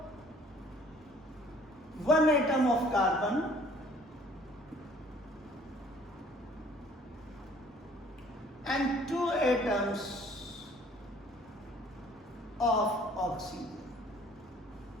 one atom of carbon and two atoms of oxygen.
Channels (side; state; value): both; normal; correlation 0.55